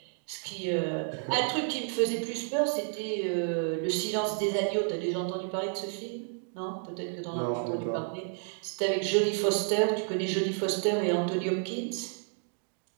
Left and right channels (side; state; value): left; silent; 57 dB below the other